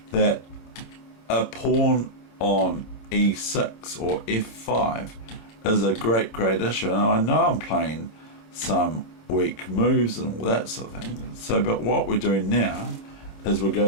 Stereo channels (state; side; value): late; right; 27 ms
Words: that a pawn on e6 or f5 is a great issue, and I know I'm playing some weak moves and all that sort of thing. So, but what we're doing now is we're